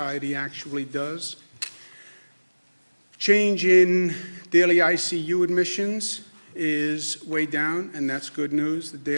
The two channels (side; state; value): both; inverted; correlation -1.00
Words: actually does. Change in daily ICU admissions is way down, and that's good news. The